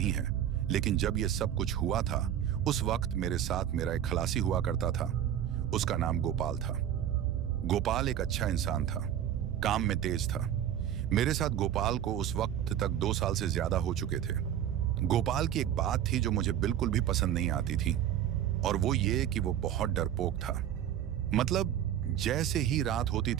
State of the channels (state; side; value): quieter; left; 10.4 dB